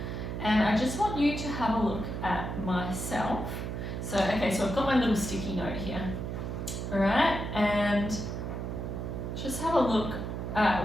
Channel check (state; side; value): noise; right; hum, 4 dB below the sound